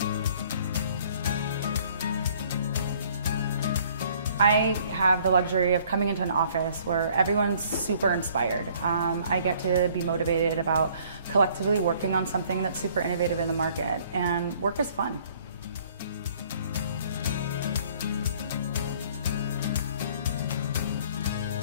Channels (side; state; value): both; inverted; correlation -0.58